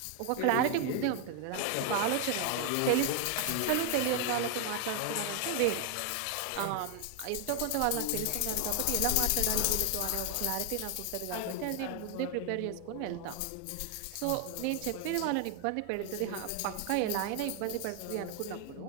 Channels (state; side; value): different; both; correlation 0.00